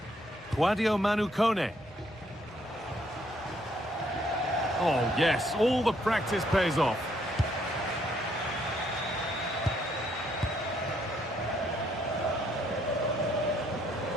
Claudio Manucone. Oh, yes, all the practice pays off.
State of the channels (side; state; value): both; normal; correlation 0.70